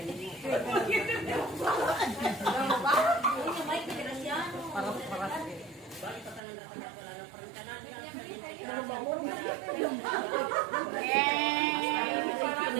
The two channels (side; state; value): left; drops out; at 6.4 s